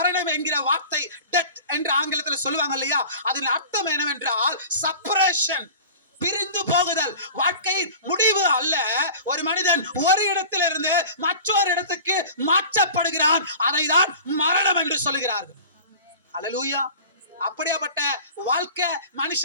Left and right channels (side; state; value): both; inverted; correlation -0.41